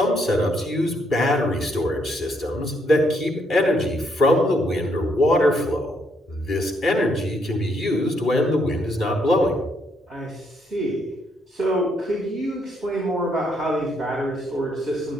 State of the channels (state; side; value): normal; both; correlation 0.73